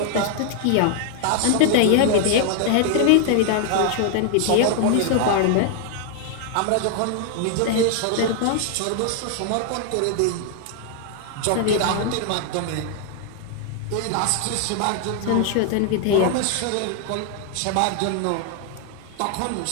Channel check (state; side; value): different; both; correlation 0.00